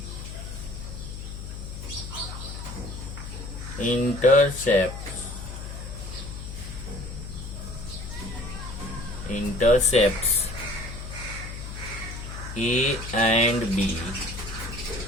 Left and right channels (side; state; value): left; noise; hum, 9 dB below the sound